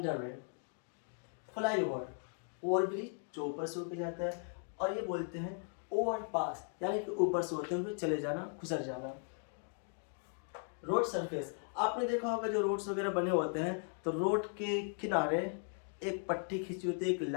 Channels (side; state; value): right; silent; 53 dB below the other